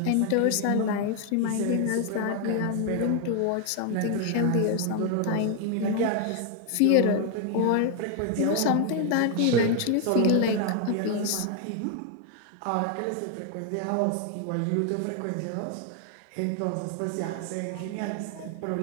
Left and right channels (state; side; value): different; both; correlation 0.00